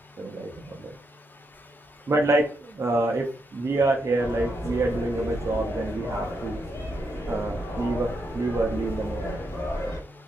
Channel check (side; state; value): both; normal; correlation 0.81